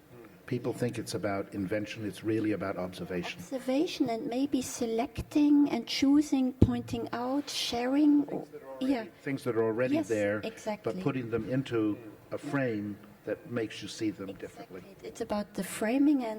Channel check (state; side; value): identical; both; correlation 1.00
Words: People think it's about invention. It's really about observation. Observation, and maybe selecting and choosing, pointing out, sharing. Things that are already Yes, there, exactly. but putting them into a frame that makes you see them differently. It's about the framing